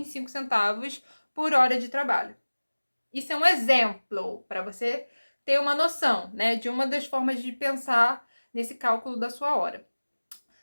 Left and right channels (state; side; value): inverted; both; correlation -1.00